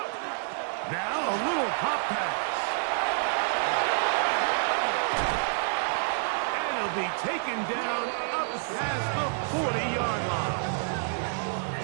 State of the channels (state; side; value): silent; left; 59 dB below the other